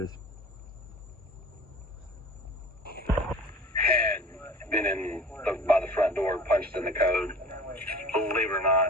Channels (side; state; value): both; normal; correlation 0.42